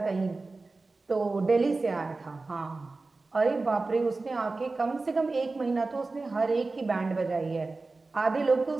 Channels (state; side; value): quieter; left; 3.6 dB